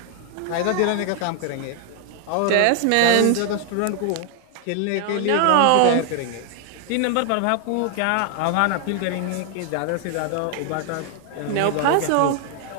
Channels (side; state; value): both; different; correlation 0.00